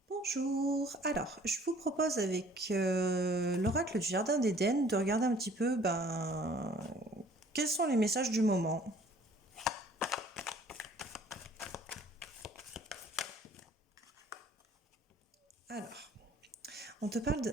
Bonjour. Alors, je vous propose avec l'oracle du Jardin d'Éden de regarder un petit peu quels sont les messages du moment. Alors, on te parle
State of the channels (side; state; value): both; normal; correlation 0.54